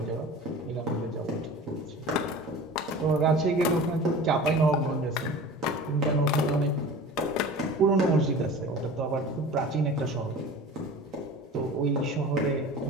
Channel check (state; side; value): normal; both; correlation 0.38